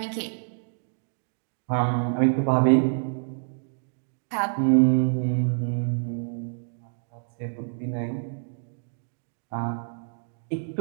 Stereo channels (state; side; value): silent; left; digital silence